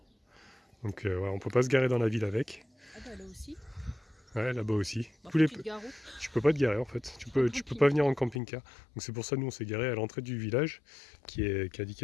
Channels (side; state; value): right; drops out; at 8.4 s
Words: Donc on peut pas se garer dans la ville avec. Ah bah là aussi. Ouais, là-bas aussi. Bah, tu peux pas te garer en fait. Tu peux pas venir en camping-car. Donc c'est pour ça nous on s'est garé à l'entrée du village qui est